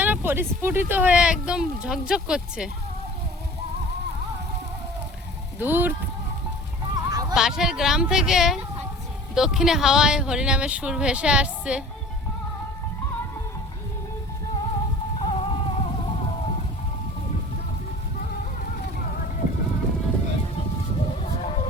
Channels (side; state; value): both; normal; correlation 0.43